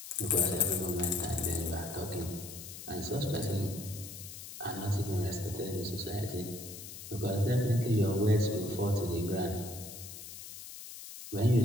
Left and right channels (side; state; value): left; noise; hiss, 12 dB below the sound